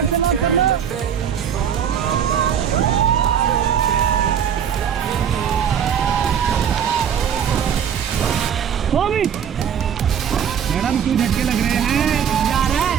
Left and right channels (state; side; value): quieter; left; 8.3 dB